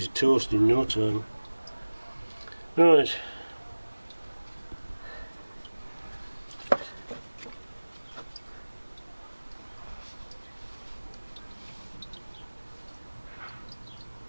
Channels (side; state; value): both; inverted; correlation -1.00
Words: toast in no time. Right.